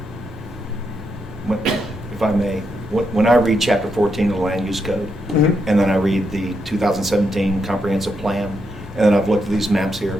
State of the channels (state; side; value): normal; both; correlation 0.81